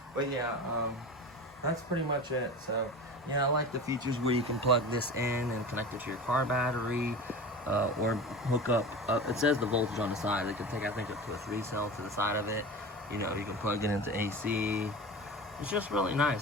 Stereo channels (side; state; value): both; normal; correlation 0.32